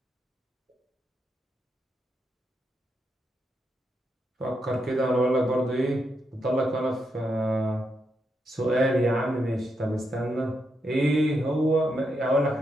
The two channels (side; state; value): both; normal; correlation 0.82